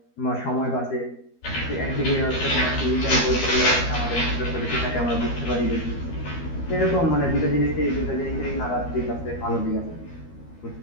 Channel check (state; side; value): late; right; 13 ms